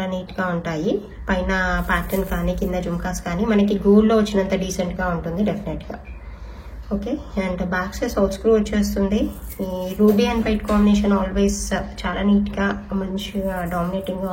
నీట్గా ఉంటాయి. పైన ప్యాటర్న్ కానీ కింద జుమ్కాస్ కానీ మనకి గోల్డ్లో వచ్చినంత డీసెంట్గా ఉంటుంది డెఫినెట్గా. Okay, and back side out screw వచ్చేస్తుంది. ఈ ruby and white combination always చాలా నీట్గా మంచిగా డామినేటింగ్గా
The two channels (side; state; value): both; identical; correlation 1.00